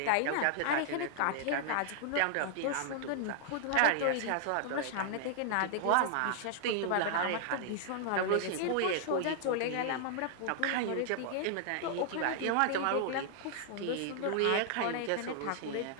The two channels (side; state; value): both; different; correlation -0.01